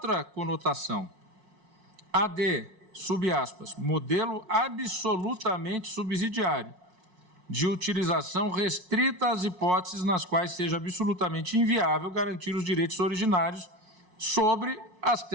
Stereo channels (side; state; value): left; late; 5.5 ms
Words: conotação, a de, sub aspas, modelo absolutamente subsidiário, de utilização restrita às hipóteses nas quais seja absolutamente inviável garantir os direitos originários sobre as